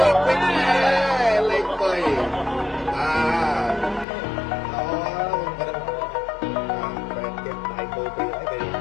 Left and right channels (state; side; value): drops out; right; at 4.0 s